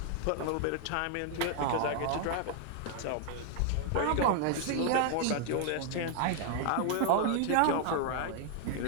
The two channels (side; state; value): both; different; correlation 0.00